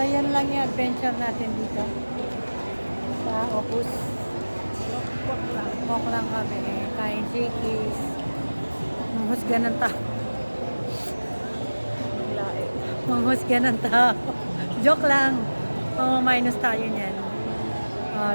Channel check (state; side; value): inverted; both; correlation -1.00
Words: yan lang yung adventure natin dito. Sa Opus. Walk lang kami. Kain Shakey's. Manghusga ng tao. Manghusga ng tao. Joke lang. Minus tayo niyan.